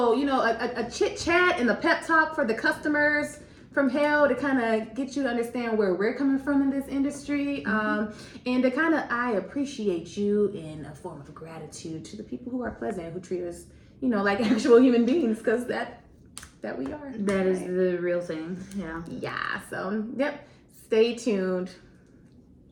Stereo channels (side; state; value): both; identical; correlation 1.00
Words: a chit chat and a pep talk for the customers from hell to kind of get you to understand where we're coming from in this industry, and to kind of, I appreciate you in a form of gratitude to the people who are pleasant, who treat us, like actual human beings, because that we are. That is the real thing. Yeah. Yeah. So, yep. Stay tuned.